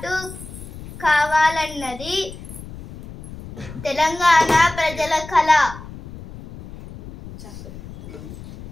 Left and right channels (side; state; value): left; noise; rumble, 14 dB below the sound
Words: కావాలన్నది తెలంగాణ ప్రజల కళ.